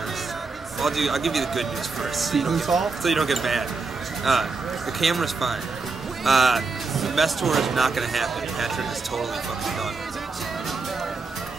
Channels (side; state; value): left; quieter; 4.2 dB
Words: I'll give you the good news first. So you don't get bad. The camera's fine. The mess tour is not gonna happen. Patrick is totally fucking done.